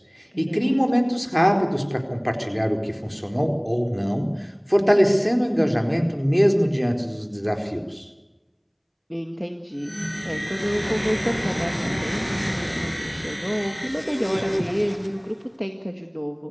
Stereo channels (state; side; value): identical; both; correlation 1.00